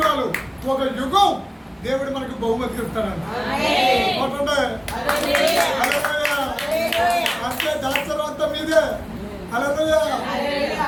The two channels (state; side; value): identical; both; correlation 1.00